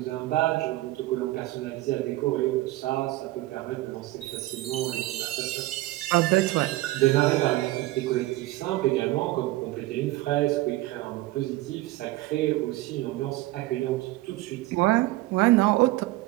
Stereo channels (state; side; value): quieter; left; 18.1 dB